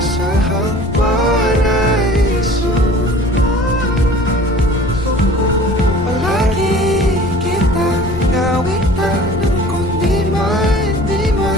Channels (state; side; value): noise; left; rumble, 8 dB below the sound